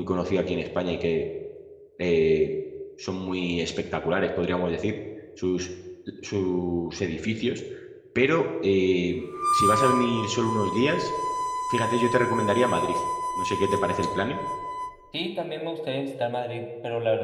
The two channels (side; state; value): both; identical; correlation 1.00